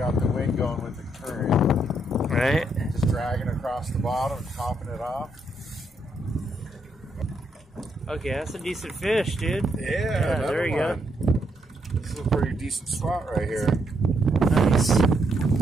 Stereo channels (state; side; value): normal; both; correlation 0.76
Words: the wind going with the current. Right? Just dragging across the bottom and topping it off. Okay, that's a decent fish, dude. Yeah, there you go. This is a pretty decent spot right here. Nice. I